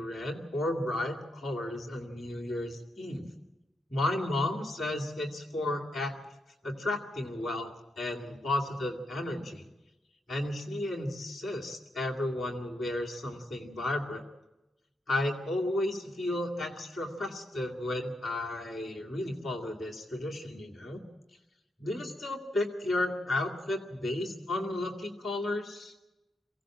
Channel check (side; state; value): both; normal; correlation 0.81